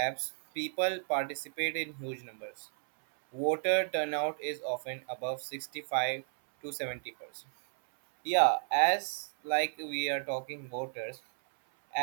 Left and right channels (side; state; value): left; silent; 56 dB below the other